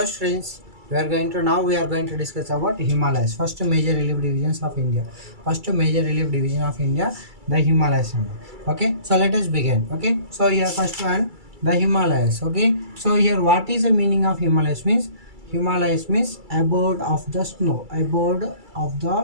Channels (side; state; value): left; late; 2.3 ms